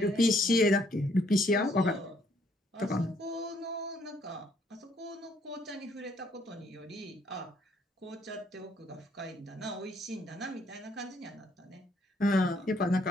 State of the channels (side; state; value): both; normal; correlation 0.67